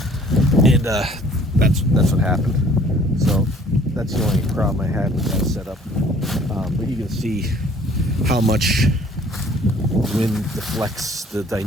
and that's what happened. So that's the only problem I had with that setup. But you can see how much wind deflects the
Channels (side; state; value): both; normal; correlation 0.55